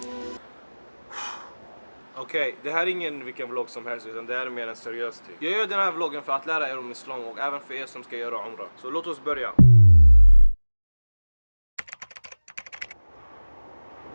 Okej, det här är ingen vilken vlogg som helst utan det här är mer en seriös typ. Jag gör den här vloggen för att lära er om islam och även för er som ska göra umrah. Så låt oss börja.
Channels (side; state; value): both; inverted; correlation -1.00